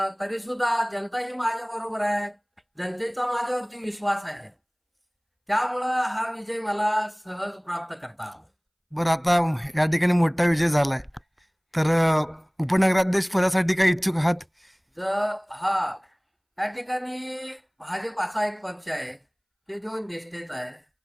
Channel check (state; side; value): identical; both; correlation 1.00